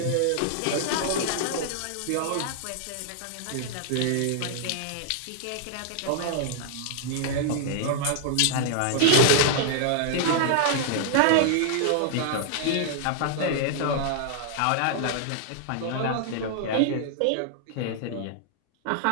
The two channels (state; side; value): different; both; correlation -0.01